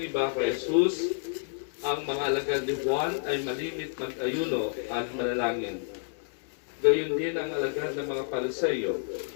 kay Jesus, ang mga alagad ni Juan ay malimit mag-ayuno at manalangin. Gayon din ang alagad ng mga Pariseo.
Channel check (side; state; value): right; silent; digital silence